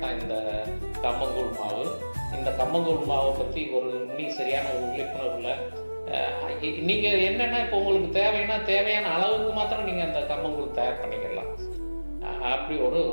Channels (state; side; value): inverted; both; correlation -1.00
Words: தான் இந்த கம்மங்கூழ் மாவு. இந்த கம்மங்கூழ் மாவை பற்றி இன்னும் சரியான ஒரு விழிப்புணர்வில் நீங்கள் என்னென்னா, இப்போ உங்களுக்கு தேவையான அளவுக்கு மாத்திரம் நீங்கள் அந்த கம்மங்கூழ் தயார் பண்ணிக்கலாம். அப்படி ஒரு